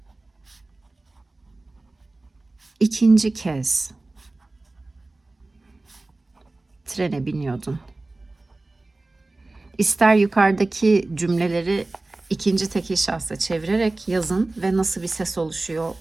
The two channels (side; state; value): left; quieter; 3.0 dB